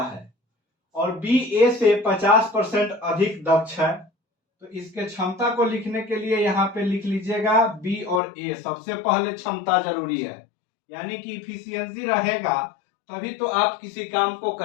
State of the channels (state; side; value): drops out; right; at 8.2 s